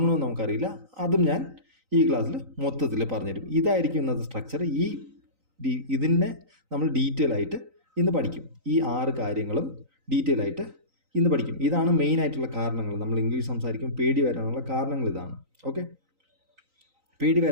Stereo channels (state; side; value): late; left; 3.9 ms